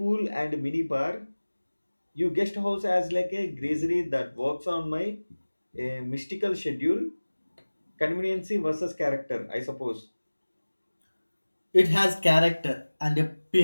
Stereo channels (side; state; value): both; inverted; correlation -1.00